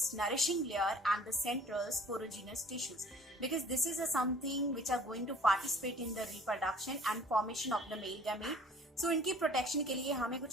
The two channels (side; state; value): both; normal; correlation 0.51